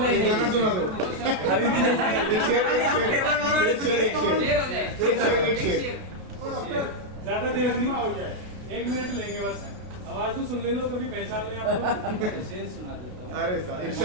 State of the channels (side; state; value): left; late; 33 ms